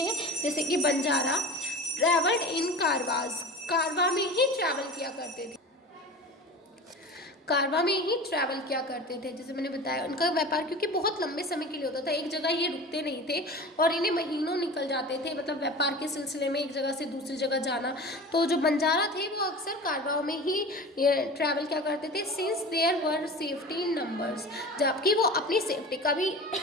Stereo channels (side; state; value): both; normal; correlation 0.34